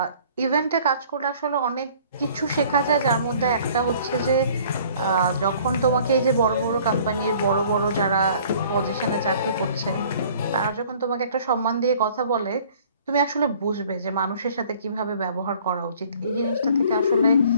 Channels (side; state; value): both; inverted; correlation -0.53